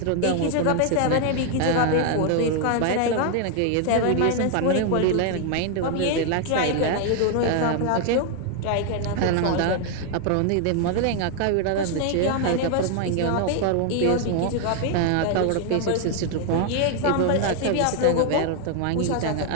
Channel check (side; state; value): both; different; correlation 0.00